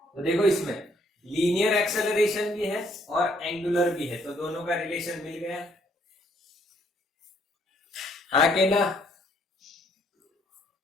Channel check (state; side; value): normal; both; correlation 0.67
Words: तो देखो इसमें लीनियर एक्सेलरेशन भी है और एंगुलर भी है, तो दोनों का रिलेशन मिल गया। हाँ के ना?